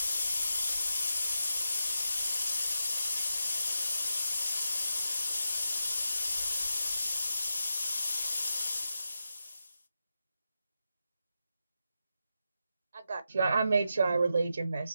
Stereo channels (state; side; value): inverted; both; correlation -0.88